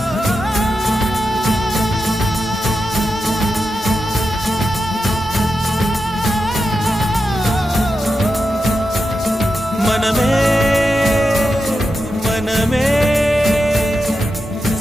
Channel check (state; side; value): normal; both; correlation 0.88